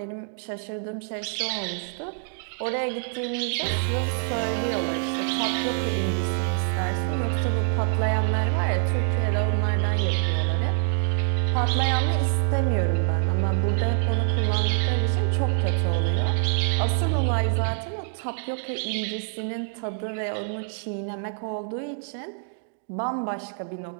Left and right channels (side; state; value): left; silent; digital silence